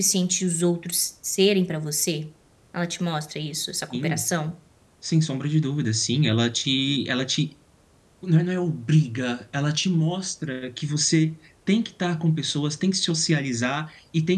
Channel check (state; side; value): identical; both; correlation 1.00